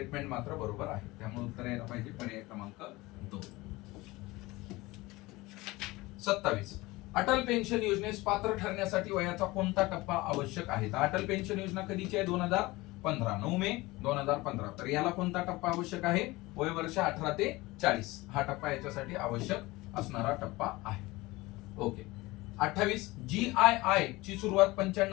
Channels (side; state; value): right; quieter; 20.9 dB